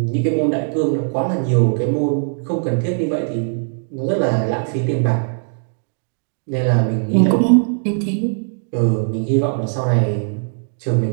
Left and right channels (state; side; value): silent; left; digital silence